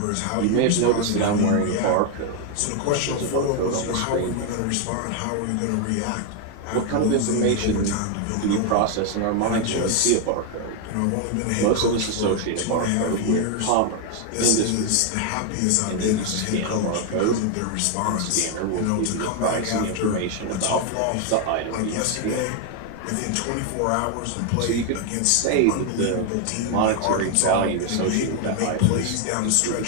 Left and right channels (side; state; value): both; different; correlation 0.01